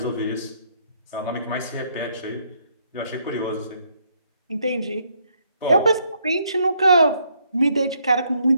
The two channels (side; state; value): both; inverted; correlation -0.70